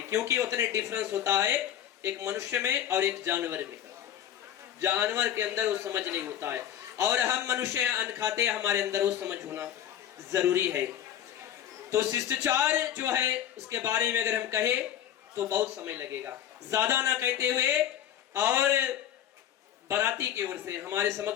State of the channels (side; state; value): right; quieter; 10.6 dB